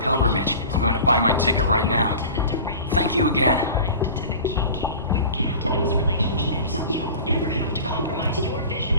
I'm going to buy my ticket right now. Thank you again.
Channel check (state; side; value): inverted; both; correlation -0.38